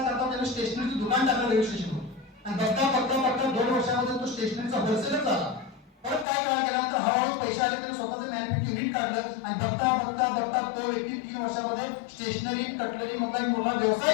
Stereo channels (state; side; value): drops out; right; at 6.2 s